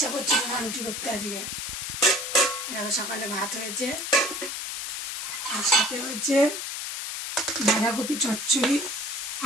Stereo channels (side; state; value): left; noise; hiss, 5 dB below the sound